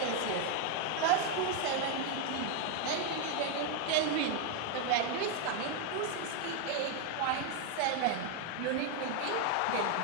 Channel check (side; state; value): both; different; correlation 0.01